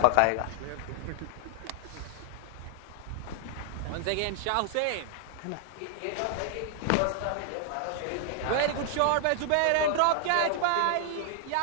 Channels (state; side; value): different; both; correlation 0.00